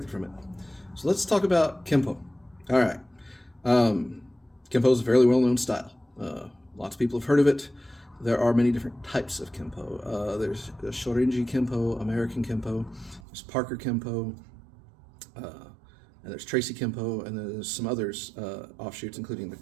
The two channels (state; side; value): drops out; left; at 13.2 s